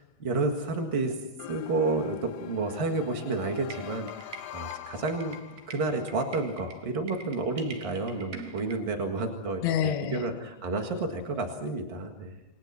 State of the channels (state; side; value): late; right; 1.6 ms